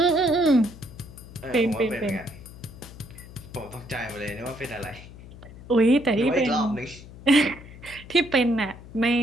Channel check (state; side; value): noise; left; hum, 17 dB below the sound